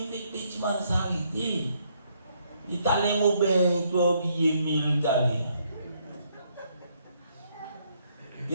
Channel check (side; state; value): both; inverted; correlation -0.71